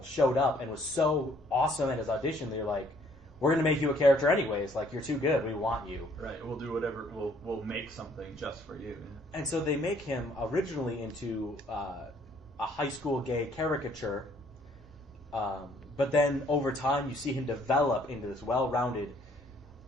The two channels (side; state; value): both; normal; correlation 0.62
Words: showed up and was so awesome at his audition, they were like, we're going to make you a character anyways. Like, you're too good. We want you. Right. We'll do whatever. We'll make something just for you. And so they make him originally into a high school gay caricature. But then over time, you see him develop into this well-rounded,